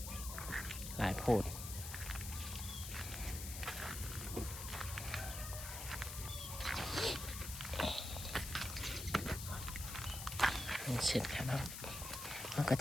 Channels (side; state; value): left; noise; hiss, 7 dB below the sound